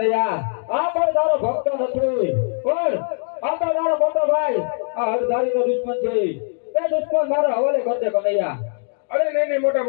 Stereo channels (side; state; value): right; silent; digital silence